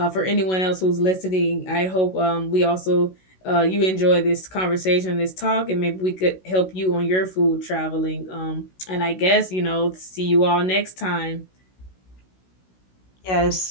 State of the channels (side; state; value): right; late; 16 ms